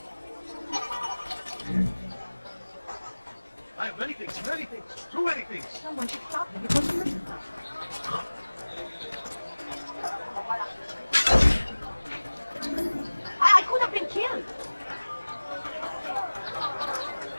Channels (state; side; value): inverted; both; correlation -1.00